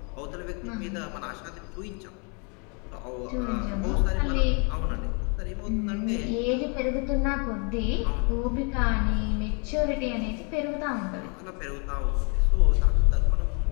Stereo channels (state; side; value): quieter; right; 35.8 dB